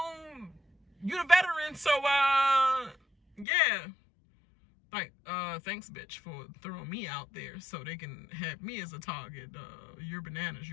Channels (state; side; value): drops out; right; at 3.5 s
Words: you the veteran, so yeah, like, thanks, bitch, for throwing me out there so they can have me as a target. You're Bananas,